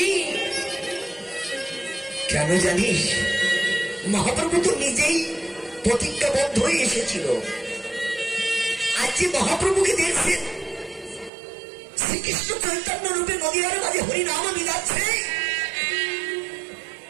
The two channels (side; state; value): left; drops out; at 11.3 s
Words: কেন জানিস? মহাপ্রভু তো নিজেই প্রতিজ্ঞাবদ্ধ হয়ে এসেছিল। আজ যে মহাপ্রভুকে দেখছেন শ্রীকৃষ্ণ চৈতন্য রূপে নদীয়ার মাঝে হরিনাম মিলাচ্ছে,